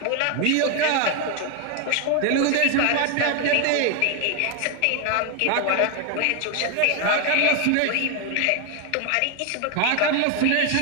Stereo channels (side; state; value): both; different; correlation 0.01